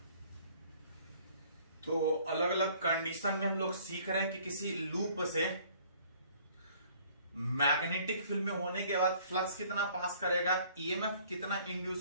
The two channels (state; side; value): inverted; both; correlation -0.57